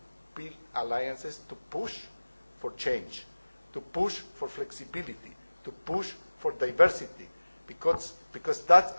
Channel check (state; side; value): inverted; both; correlation -1.00